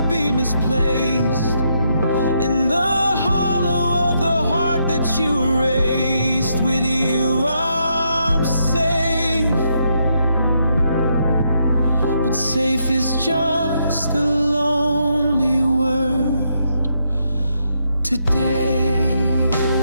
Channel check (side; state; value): both; inverted; correlation -0.77